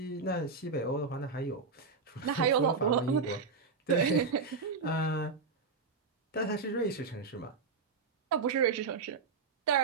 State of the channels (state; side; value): quieter; left; 4.7 dB